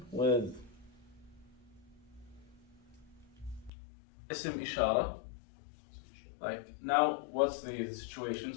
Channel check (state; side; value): drops out; right; at 3.7 s